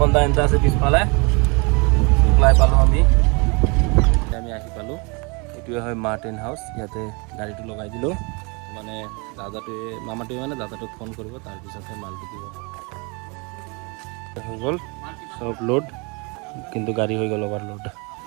দা এন্টা আছে পিছফালে শুক্লাই পালো আমি আহি পালো এটুৱে হয় মাৰ্টেন হাউস ইয়াতে গাড়ীটো লগাই দিলো মানে দাদাটোৱে মামাটোৱে মানে দাদাটোক ফোন কৰিব তাৰ পিছতে মালটো দিব হৈ গ'ল সব লোড কিন্তু গাড়ী হৈ গ'ল ওভাৰলোড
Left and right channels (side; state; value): left; quieter; 30.4 dB